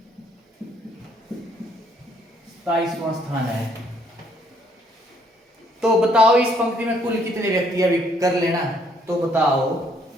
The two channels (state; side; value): normal; both; correlation 0.67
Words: स्थान है। तो बताओ इस पंक्ति में कुल कितने व्यक्ति, अभी कर लेना, तो बताओ